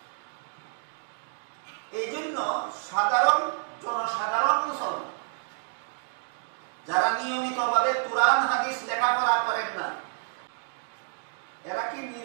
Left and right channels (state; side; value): silent; left; 59 dB below the other